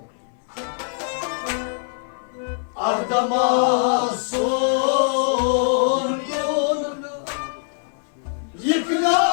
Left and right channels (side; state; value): right; silent; 64 dB below the other